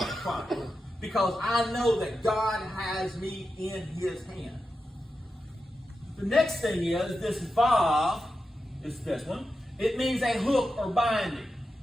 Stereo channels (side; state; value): both; normal; correlation 0.90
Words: problem because I know that God has me in his hand. The next thing is this vav, is this one. It means a hook or binding.